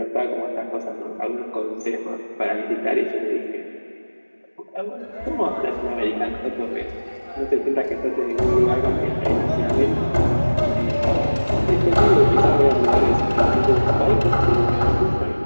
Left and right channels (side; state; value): both; inverted; correlation -1.00